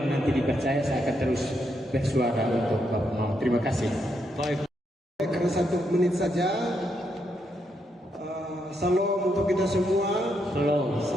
nanti dipercaya, saya akan terus bersuara untuk Bapak Mama. Terima kasih. Baik. Karena 1 menit saja. Salam untuk kita semua. Salam.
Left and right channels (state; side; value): normal; both; correlation 0.79